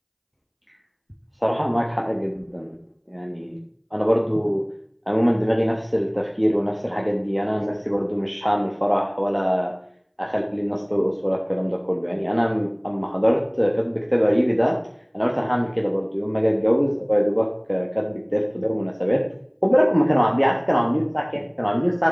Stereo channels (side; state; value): both; identical; correlation 1.00